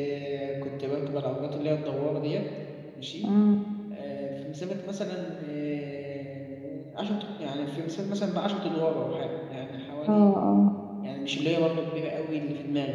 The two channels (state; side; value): identical; both; correlation 1.00